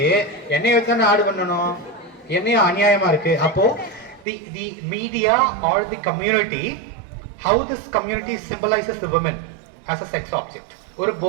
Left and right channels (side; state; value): left; drops out; at 4.2 s